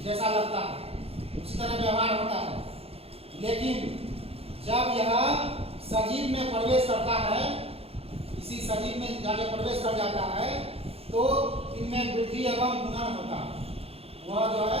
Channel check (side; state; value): left; late; 0.29 ms